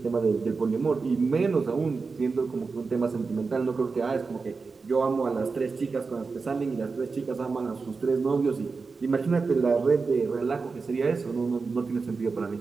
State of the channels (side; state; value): left; quieter; 4.5 dB